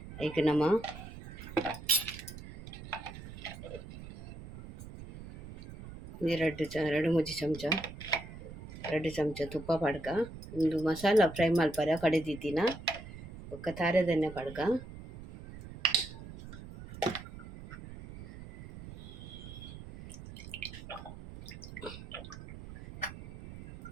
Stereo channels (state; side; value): noise; right; rumble, 13 dB below the sound